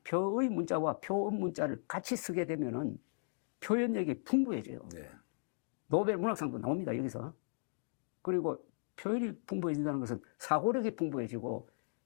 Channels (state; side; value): silent; right; digital silence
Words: 표의 문자와 표음 문자를 같이 쓰게 되면은 표현력이 풍부해져요. 노벨 문학상도 나옵니다, 여기서. 그리고 표현이 풍부해진다는 것은 사고력이 풍부해지고